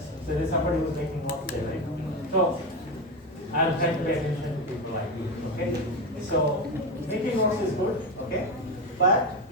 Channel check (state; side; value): normal; both; correlation 0.16